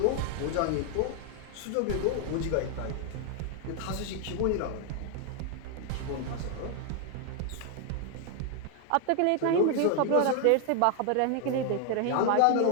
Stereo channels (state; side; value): different; both; correlation 0.00